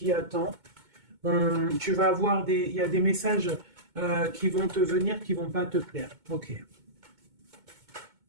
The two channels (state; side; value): late; left; 2.2 ms